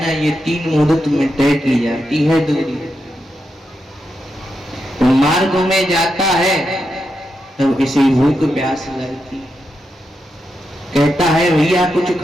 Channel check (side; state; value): both; normal; correlation 0.85